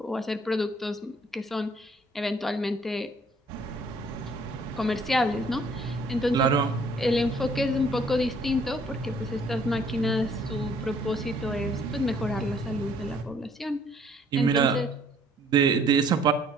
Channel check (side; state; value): both; normal; correlation 0.61